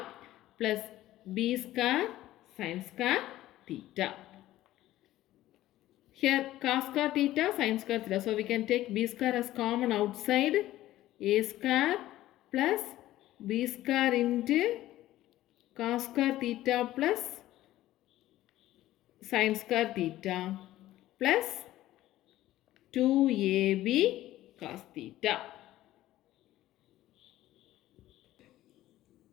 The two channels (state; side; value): quieter; right; 14.9 dB